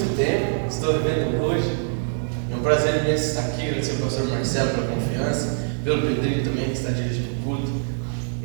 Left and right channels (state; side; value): silent; left; 63 dB below the other